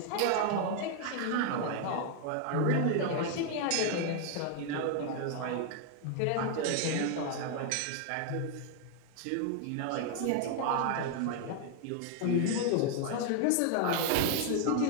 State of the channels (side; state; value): both; different; correlation 0.00